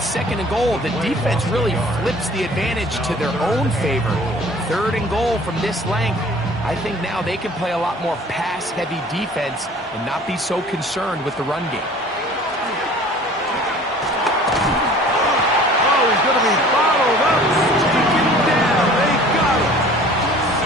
and goal, the defense really flips the advantage to their own favor. 3rd and goal from this length. I think now they can play a lot more pass-heavy defense and not be so concerned with the run game. Oh, he's going to be bottled up. Taken down. They got him.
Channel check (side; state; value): both; normal; correlation 0.48